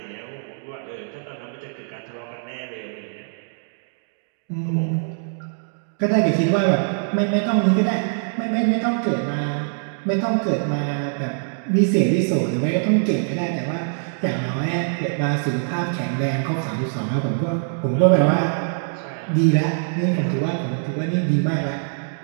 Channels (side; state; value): left; silent; digital silence